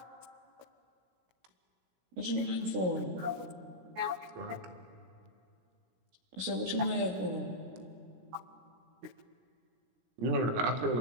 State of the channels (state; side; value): late; left; 17 ms